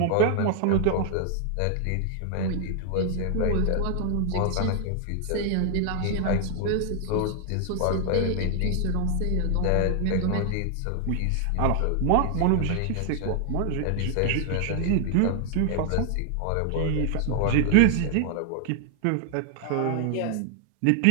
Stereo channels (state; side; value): different; both; correlation 0.00